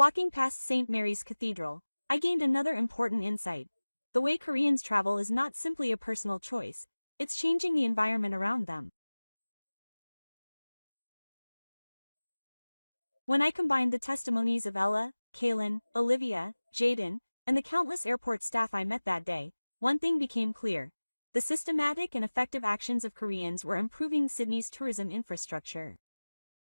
past St. Mary's Cathedral, I gained another important insight. The way Koreans travel is not simply a personal choice, it's changing the environment around them. When I combined the testimonies of Ella, Kaylin, Olivia, Jaden, and the countless airport staff I met that day, one thing became clear. The systematic and effective actions of Koreans were improving Sydney's tourism infrastructure.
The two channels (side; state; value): both; inverted; correlation -1.00